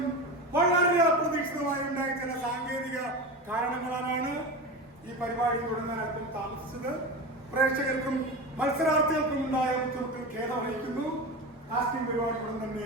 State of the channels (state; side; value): normal; both; correlation 0.25